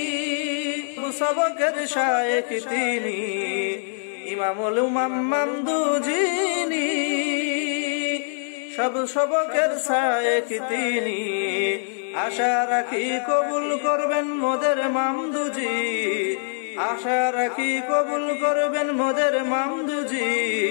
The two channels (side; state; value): right; silent; digital silence